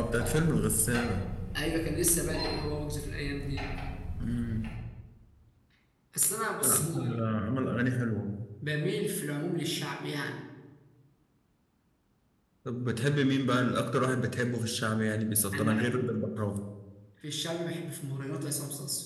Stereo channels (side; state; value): both; identical; correlation 1.00